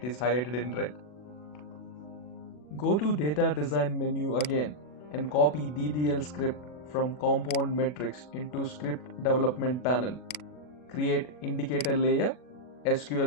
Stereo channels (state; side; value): late; right; 40 ms